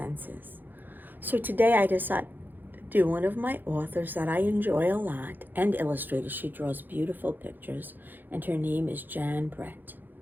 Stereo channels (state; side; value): late; left; 0.089 ms